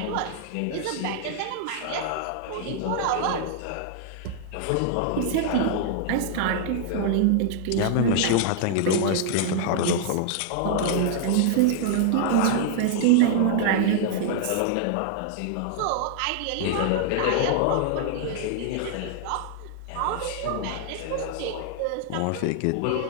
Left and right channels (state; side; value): different; both; correlation -0.01